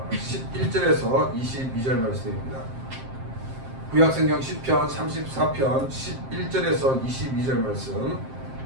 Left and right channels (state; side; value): late; left; 7.6 ms